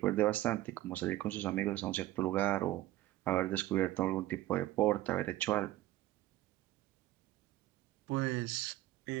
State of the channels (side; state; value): left; quieter; 15.7 dB